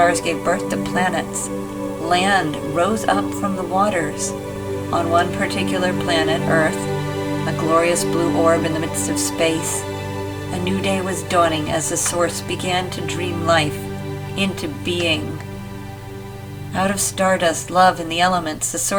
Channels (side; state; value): both; identical; correlation 1.00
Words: gave birth to planets. Land rose up from the waters. On one particular planet, Earth, a glorious blue orb in the midst of space, a new day was dawning as the source began to dream life into being. Out of stardust, love, and the elements, the